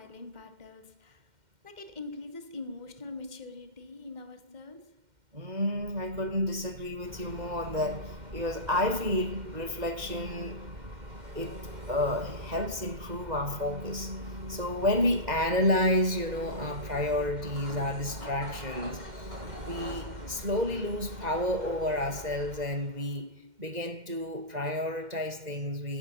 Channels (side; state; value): left; late; 2.1 ms